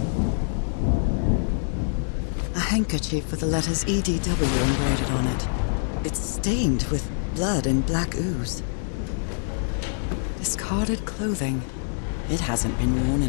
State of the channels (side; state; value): right; silent; digital silence